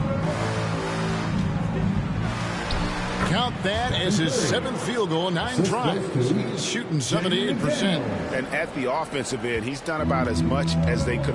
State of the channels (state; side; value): identical; both; correlation 1.00